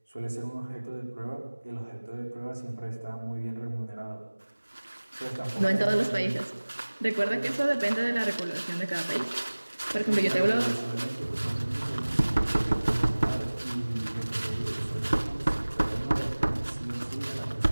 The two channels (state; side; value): inverted; both; correlation -1.00